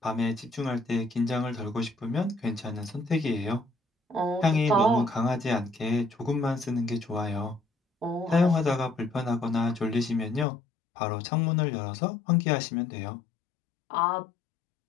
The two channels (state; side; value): drops out; right; at 10.5 s